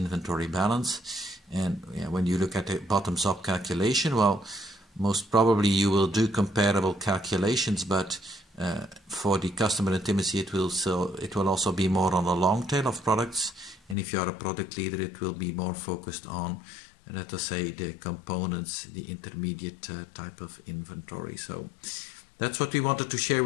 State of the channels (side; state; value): right; drops out; at 14.0 s